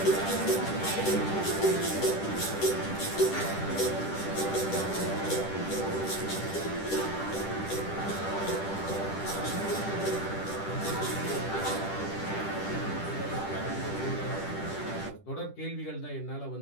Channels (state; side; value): late; right; 10 ms